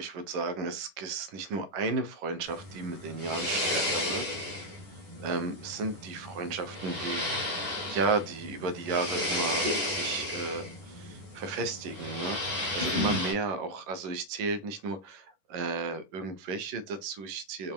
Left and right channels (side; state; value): left; late; 10 ms